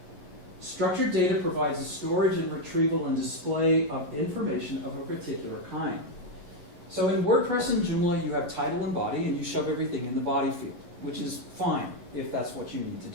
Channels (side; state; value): left; late; 11 ms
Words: Structured data provides the storage and retrieval and display of information of a particular kind. So in WordPress and Joomla, you have title and body, and you shove everything in the body field, which is fine if that's what you need